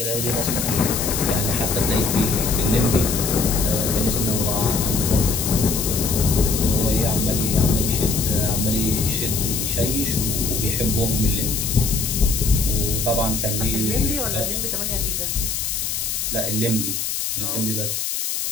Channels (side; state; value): left; noise; hiss, 2 dB below the sound